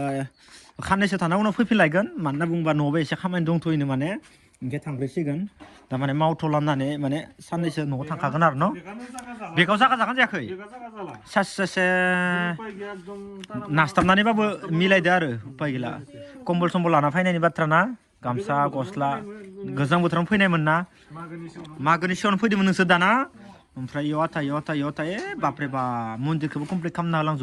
खाननैसो थाना उनाव फैफिनलायगोन मानो होनना बुङोबा न'आवबो एसे खामानि दंथ'योनो माने ओमफ्राय थांफैसिगोन थारमाने मावथ'लामनानै माने साननैसो न'आव थांखागोन आरो न' बेगाव जागा जागोन जायाखै सासे नास्ताबनानैबाबो मिलायदो आरो उपाय गैला कम्बल सम्बल लाना फैनायनि बाथ्रा ना गामसा गस्ला गोजां बोथोरावनो फैनायमोन ना मागोनि सिगाङावनो फैदोंमोन नोंसोर दाना ओमफ्राय इयाव आथा बापरे बा मन्दिरखौबो कमप्लिट खालामना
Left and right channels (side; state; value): both; identical; correlation 1.00